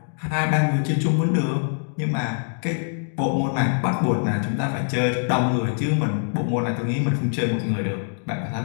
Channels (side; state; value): right; silent; digital silence